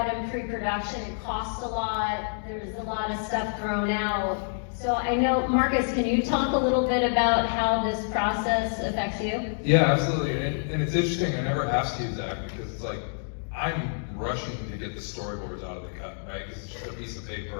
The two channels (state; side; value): silent; right; digital silence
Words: in pre-production, it costs a lot, there's a lot of stuff thrown out. So I know, Marcus, can you talk a little bit about how this process affects you? Yeah, absolutely. And it's interesting, I never asked you, Zach, because it's like, I'm rushing to get the storyboards out of the cut, right? Because it's just a piece of